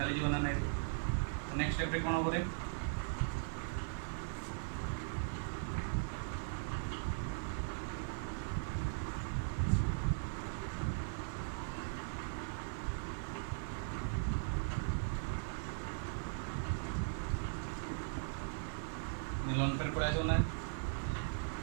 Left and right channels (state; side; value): silent; left; 52 dB below the other